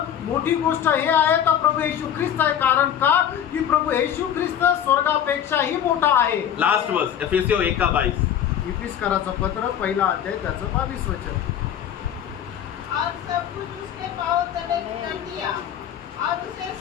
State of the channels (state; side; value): quieter; right; 9.7 dB